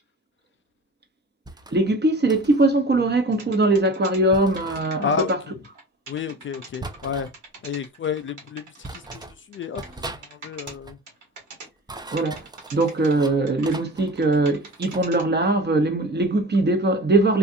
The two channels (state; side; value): normal; both; correlation 0.37